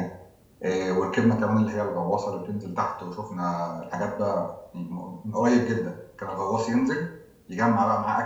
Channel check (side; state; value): both; identical; correlation 1.00